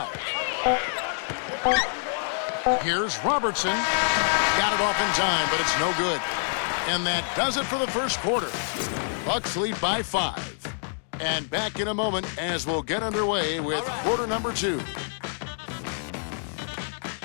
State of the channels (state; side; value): silent; right; digital silence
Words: Here's Robertson. Got it off in time, but it's no good. And that does it for the first quarter. Bucks lead by 5. And back in a moment as we'll get underway with quarter number 2.